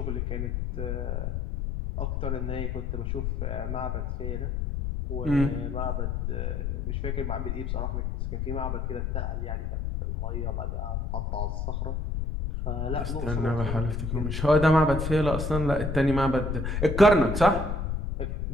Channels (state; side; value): noise; left; rumble, 1 dB below the sound